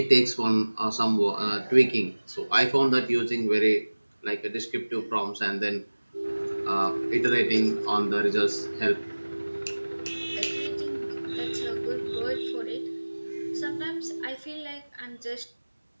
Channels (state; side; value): inverted; both; correlation -1.00